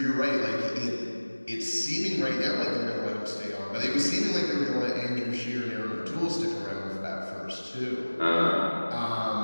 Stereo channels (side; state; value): both; inverted; correlation -1.00